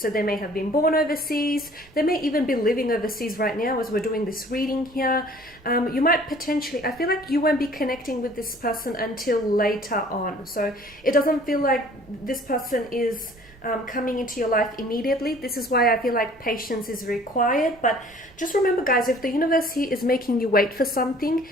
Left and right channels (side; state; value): right; noise; rumble, 26 dB below the sound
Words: they may have been born overseas, they may even be living overseas right now as we're doing this reading here. You might potentially, I feel like you won't be connecting with this person until later on. So it doesn't feel like this person is coming into your life immediately. This is why I feel like patience is required. But just remember, guys, if the universe here is making you wait for something,